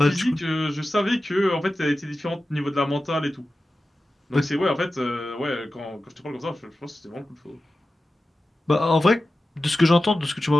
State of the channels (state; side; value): normal; both; correlation 0.94